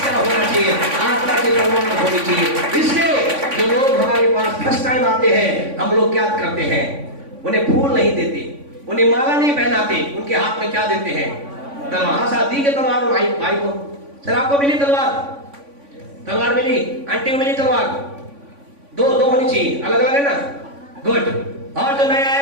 क्या होना चाहिए? आत्मा की तलवार होनी चाहिए। इसलिए जो लोग हमारे पास फर्स्ट टाइम आते हैं, हम लोग क्या करते हैं? उन्हें फूल नहीं देते, उन्हें माला नहीं पहनाते, उनके हाथ में क्या देते हैं? तलवार। शादी के तलवार भाई भाई को, सर आपको मिली तलवार? तलवार मिली, आंटी को मिली तलवार? दो होनी चाहिए, अलग अलग है ना? गुड। और जो नया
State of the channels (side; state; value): left; late; 3.5 ms